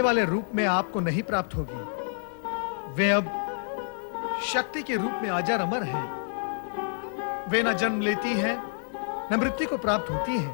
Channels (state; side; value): silent; right; 59 dB below the other